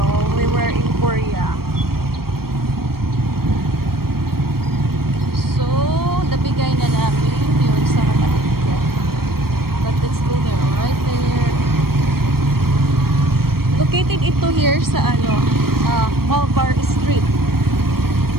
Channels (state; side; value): late; left; 0.94 ms